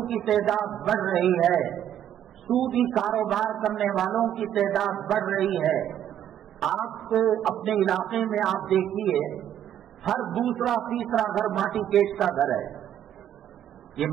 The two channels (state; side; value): quieter; left; 10.6 dB